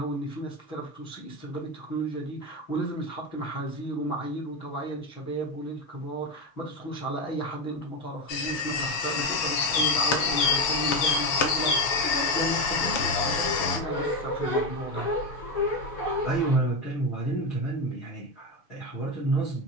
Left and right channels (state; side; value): late; right; 7.2 ms